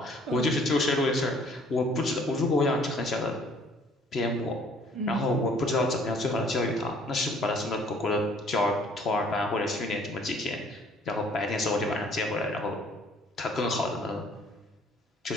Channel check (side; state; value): both; normal; correlation 0.58